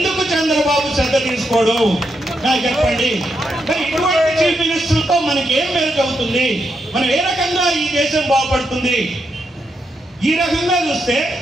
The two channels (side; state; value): both; normal; correlation 0.82